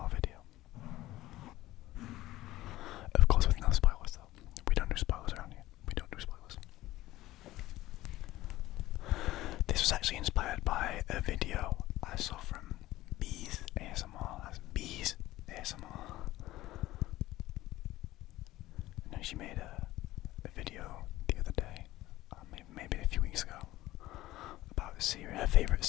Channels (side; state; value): right; quieter; 16.4 dB